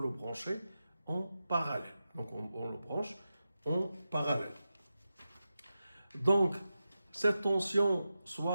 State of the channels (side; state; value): both; inverted; correlation -0.92